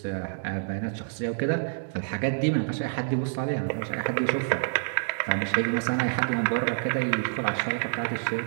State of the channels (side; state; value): left; silent; digital silence